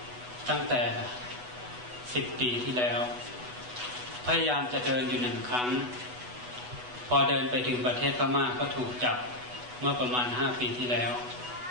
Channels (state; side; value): late; left; 8.1 ms